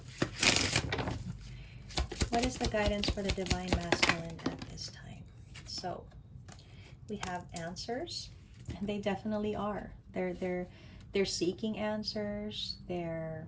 What is the guidance for the divine masculine at this time? So we have answers, and they definitely are. They're seeking answers. They're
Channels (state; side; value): identical; both; correlation 1.00